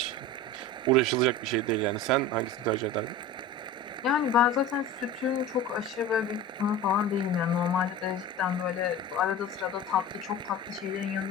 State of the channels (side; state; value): both; normal; correlation 0.33